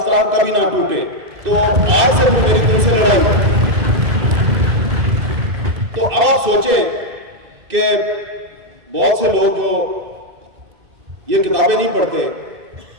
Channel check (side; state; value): left; late; 2.6 ms